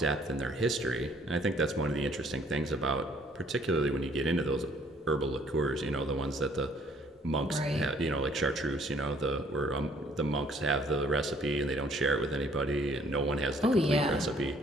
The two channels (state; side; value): normal; both; correlation 0.61